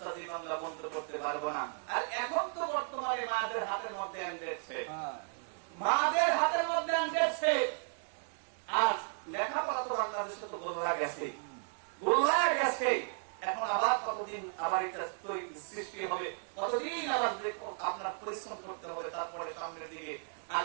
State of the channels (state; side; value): silent; left; 55 dB below the other